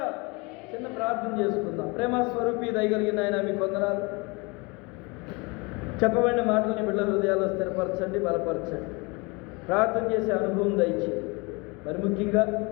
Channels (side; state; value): right; quieter; 27.9 dB